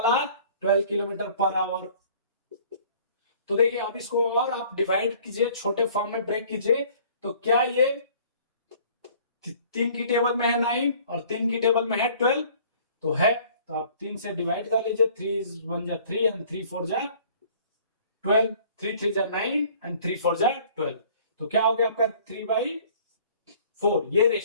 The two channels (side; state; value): both; inverted; correlation -0.53